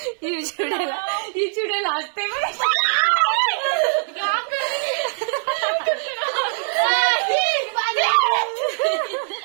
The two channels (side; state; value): left; silent; 57 dB below the other